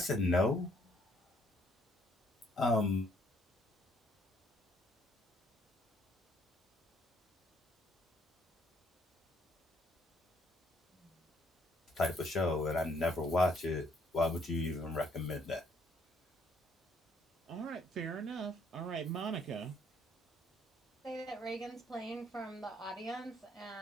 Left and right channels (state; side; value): normal; both; correlation 0.66